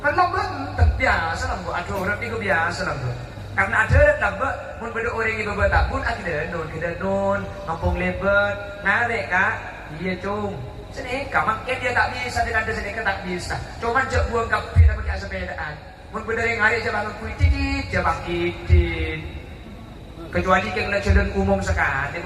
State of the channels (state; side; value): identical; both; correlation 1.00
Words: benteng biasa lah, ada orang itu biasa lah. Karena ada orang lah, mun beda orang ibu bapa pun kita non, ngampung lebat, narik kak, dia cung. Seneka, makin dia tak bisa dengan seneka tak bisa. Cuma jauh buang kapi dan pakai sepedaan. Mun beda yang hari je bangun kuitit, je bakitin. Kecuali kalau jalan umum sekali,